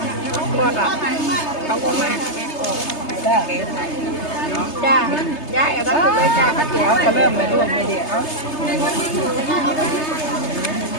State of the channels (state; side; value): late; right; 3.3 ms